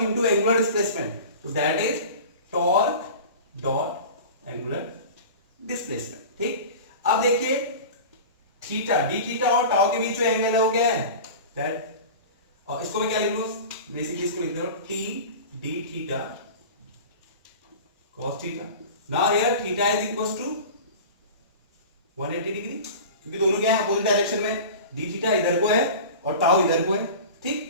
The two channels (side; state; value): both; inverted; correlation -0.35